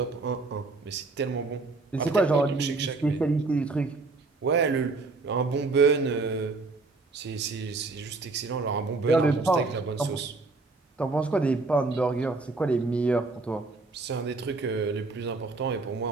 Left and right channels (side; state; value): left; quieter; 3.7 dB